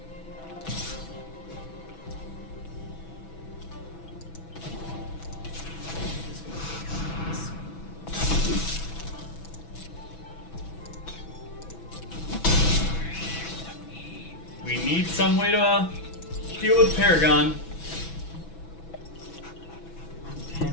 We need some way to deal with Paragon.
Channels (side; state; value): right; late; 6.1 ms